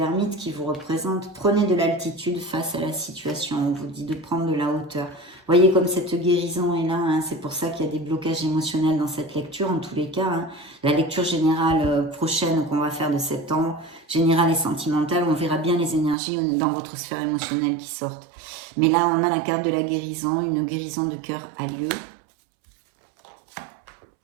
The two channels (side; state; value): left; drops out; at 16.2 s